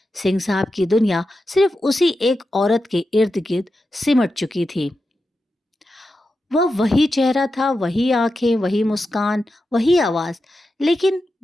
सिंह साहब की दुनिया सिर्फ उसी एक औरत के इर्द गिर्द सिमट चुकी थी। वह वही चेहरा था, वही आंखें, वही मुस्कान, वही आवाज। लेकिन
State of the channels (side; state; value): both; normal; correlation 0.90